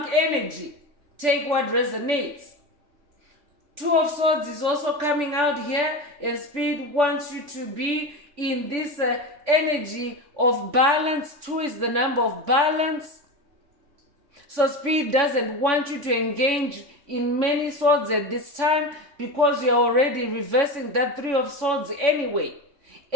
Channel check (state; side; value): late; left; 3.5 ms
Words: energy. Take what resonates. 2 of Swords is also coming out here, and Spirit wants you to be in this energy of balance. 2 is the number of balance. So Spirit doesn't want you to engage in many swords at this time, because you're already reversing that 3 of Swords anyway.